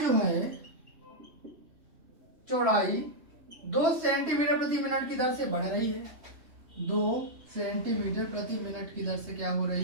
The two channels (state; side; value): late; left; 3.1 ms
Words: है, चौड़ाई 2 सेंटीमीटर प्रति मिनट की दर से बढ़ रही है। 2 सेंटीमीटर प्रति मिनट की दर से क्या हो